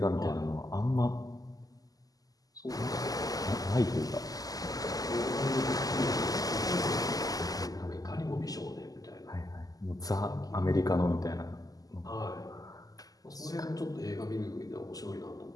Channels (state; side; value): late; right; 0.17 ms